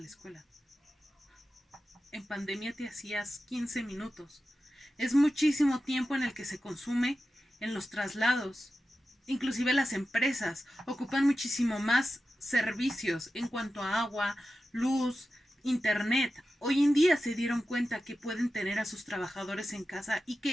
escuela. En pandemia te hacías 15 minutos. Es muchísimo tiempo en el que se consume en los traslados. Inclusive las empresas ocupan muchísimo más servicios en cuanto a agua, luz, internet. Hoy en día se dieron cuenta que pueden tener a sus trabajadores en casa y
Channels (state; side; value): normal; both; correlation 0.92